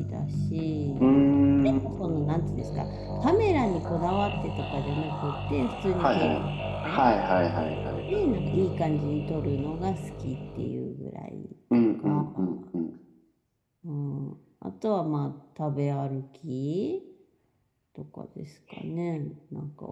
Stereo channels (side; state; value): both; identical; correlation 1.00